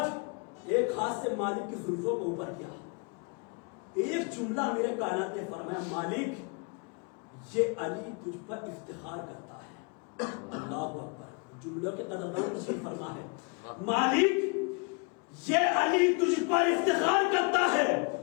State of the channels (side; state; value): right; quieter; 33.4 dB